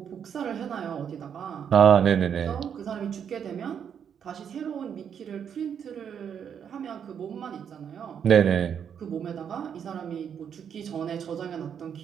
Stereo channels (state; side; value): quieter; left; 8.0 dB